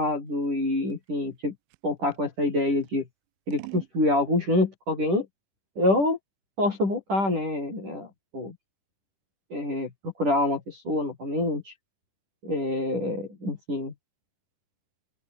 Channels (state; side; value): late; left; 10 ms